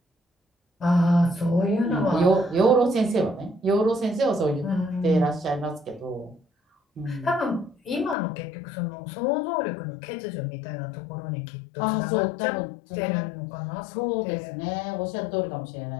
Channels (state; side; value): drops out; right; at 8.2 s